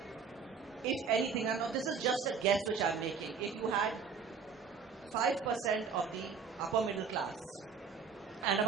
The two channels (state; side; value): quieter; left; 5.9 dB